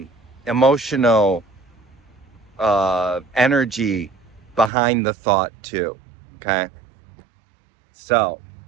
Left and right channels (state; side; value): drops out; left; at 4.7 s